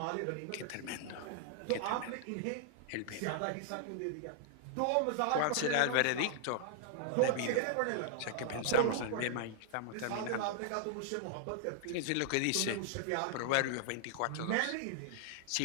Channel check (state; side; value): different; both; correlation 0.00